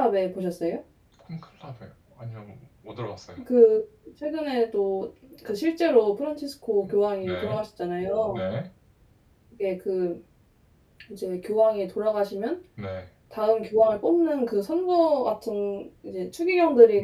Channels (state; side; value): identical; both; correlation 1.00